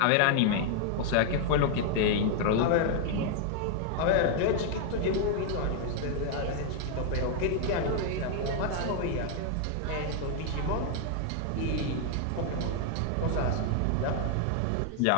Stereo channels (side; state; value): both; different; correlation 0.00